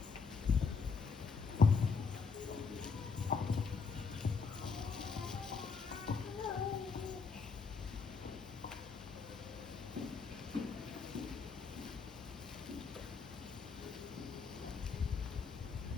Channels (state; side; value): quieter; right; 5.2 dB